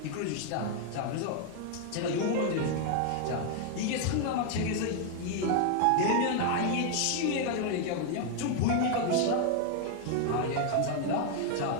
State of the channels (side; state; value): both; different; correlation 0.00